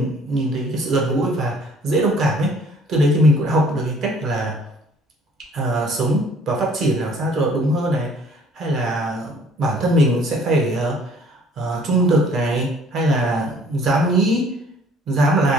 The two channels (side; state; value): both; normal; correlation 0.56